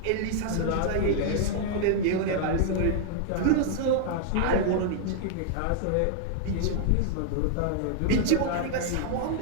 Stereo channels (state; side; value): different; both; correlation -0.01